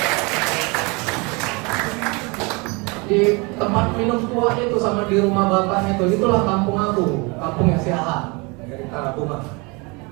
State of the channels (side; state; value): left; quieter; 28.3 dB